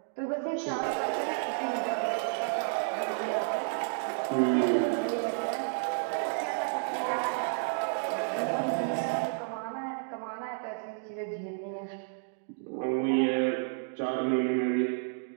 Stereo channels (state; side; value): silent; left; digital silence